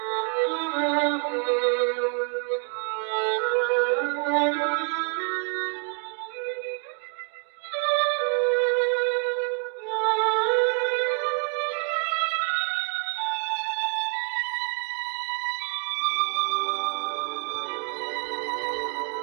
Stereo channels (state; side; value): quieter; left; 37.5 dB